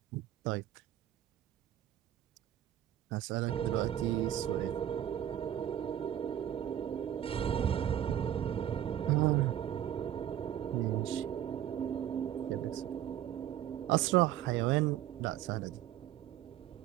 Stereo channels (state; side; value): quieter; left; 11.4 dB